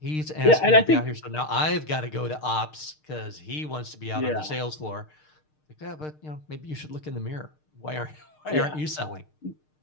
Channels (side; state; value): right; late; 6.6 ms